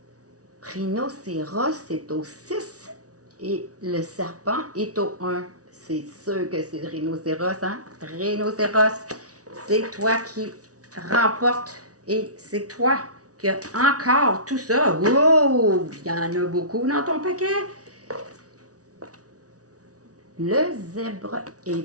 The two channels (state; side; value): late; left; 0.67 ms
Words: Rhinocéros, c'est au 6 et le serpent est au 1. C'est sûr que c'est le rhinocéros, hein? Rhinocéros, c'est toi qui remporte et c'est toi qui as encore tout ça. Wow! Il y en a beaucoup dans ton paquet. Le zèbre